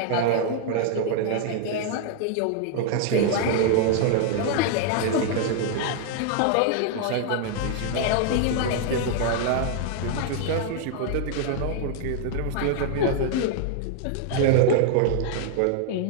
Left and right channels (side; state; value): both; different; correlation 0.00